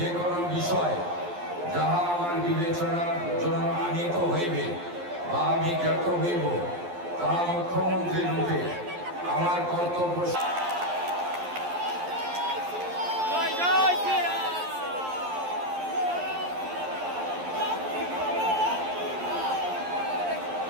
কোনো বিষয় যাহা আমার বিবেচনার জন্য আনিত হইবে বা আমি জ্ঞাত হইব, তাহা মুখ্যমন্ত্রী রূপে আমার কর্তব্য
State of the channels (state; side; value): late; left; 11 ms